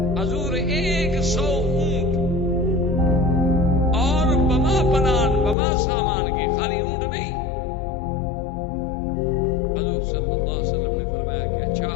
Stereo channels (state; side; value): drops out; right; at 5.6 s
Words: حضور 100 اونٹ اور بما پلان بما سامان کے، خالی اونٹ نہیں۔ حضور صلی اللہ علیہ وسلم نے فرمایا کہ اچھا،